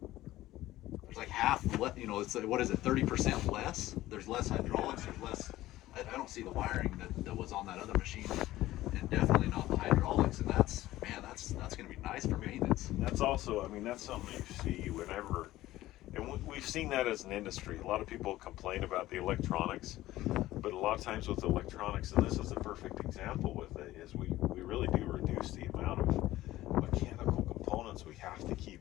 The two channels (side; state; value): right; quieter; 15.8 dB